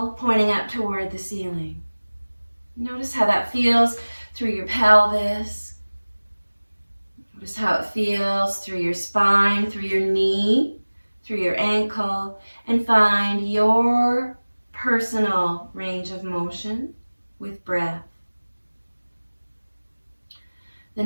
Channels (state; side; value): inverted; both; correlation -1.00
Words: pointing up toward the ceiling. Notice how that feels through your pelvis. Notice how it feels through your spine, through your knee, through your ankle, and find your personal range of motion with breath. The